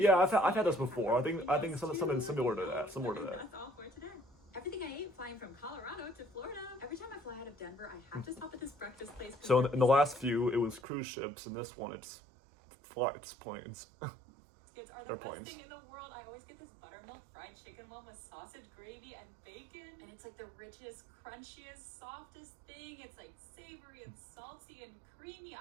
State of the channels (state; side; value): drops out; left; at 10.8 s